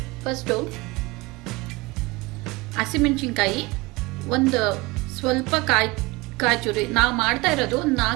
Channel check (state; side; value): quieter; left; 23.5 dB